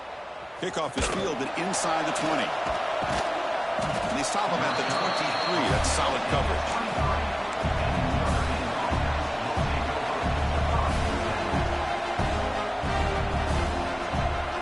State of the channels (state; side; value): identical; both; correlation 1.00